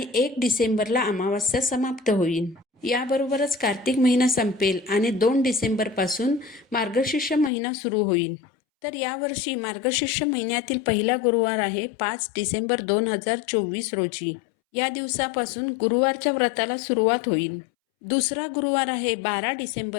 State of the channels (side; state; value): right; drops out; at 7.5 s